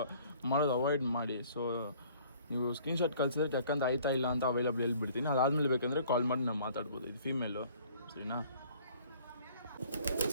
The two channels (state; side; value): inverted; both; correlation -0.55